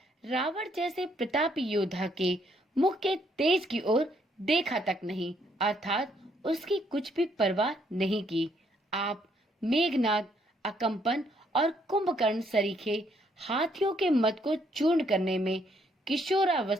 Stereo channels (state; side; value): normal; both; correlation 0.70